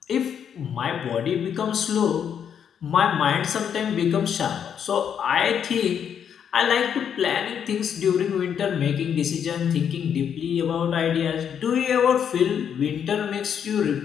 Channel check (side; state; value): right; quieter; 8.2 dB